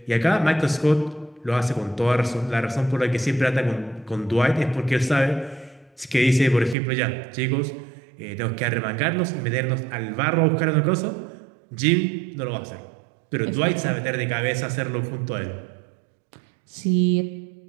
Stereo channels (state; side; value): drops out; left; at 6.8 s